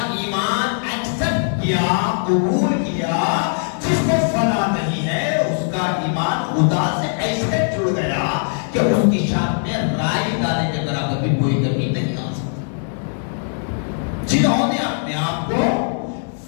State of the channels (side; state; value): right; silent; 66 dB below the other